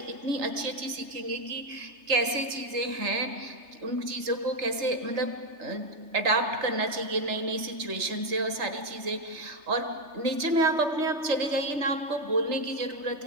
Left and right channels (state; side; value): late; left; 3.3 ms